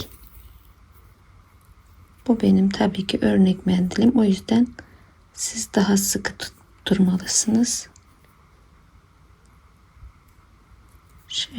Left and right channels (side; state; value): both; identical; correlation 1.00